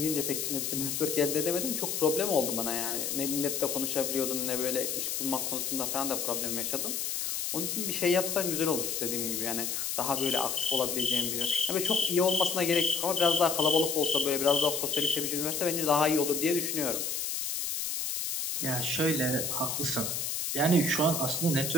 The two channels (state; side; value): noise; left; hiss, 2 dB below the sound